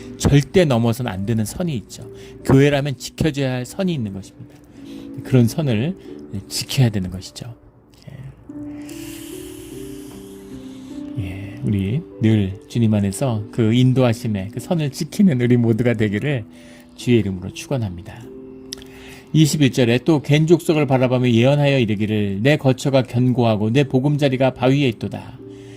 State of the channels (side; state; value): both; identical; correlation 1.00